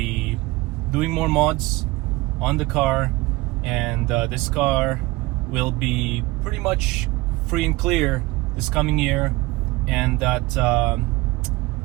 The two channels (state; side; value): quieter; left; 20.9 dB